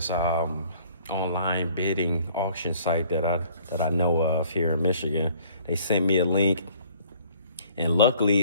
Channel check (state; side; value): inverted; both; correlation -0.57